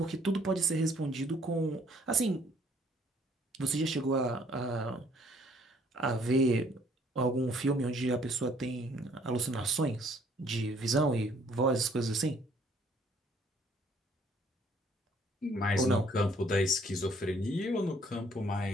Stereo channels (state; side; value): normal; both; correlation 0.62